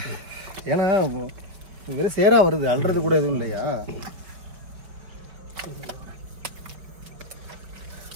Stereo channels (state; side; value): late; left; 5.5 ms